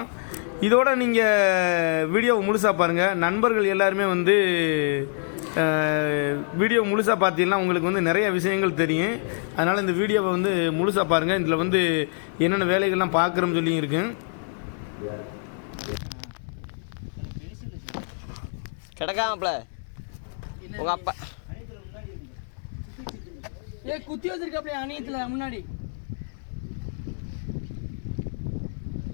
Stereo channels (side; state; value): right; silent; digital silence